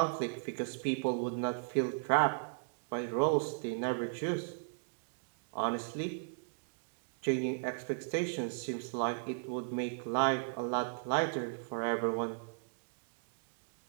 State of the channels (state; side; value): silent; left; digital silence